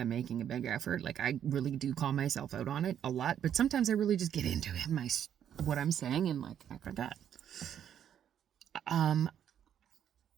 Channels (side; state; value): left; quieter; 9.5 dB